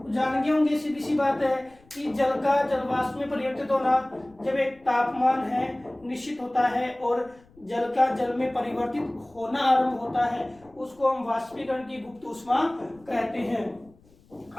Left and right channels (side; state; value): left; noise; rumble, 29 dB below the sound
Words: जान गए होंगे, सीधी सी बात है कि जल का जलवाष्प में परिवर्तित होना, जब एक तापमान है निश्चित होता है और जल का जल में परिवर्तित होना आरंभ होता है, उसको हम वाष्पीकरण की गुप्त ऊष्मा कहते हैं।